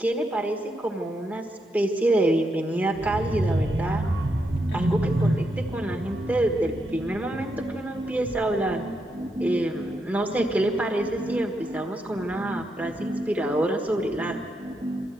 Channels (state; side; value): normal; both; correlation 0.82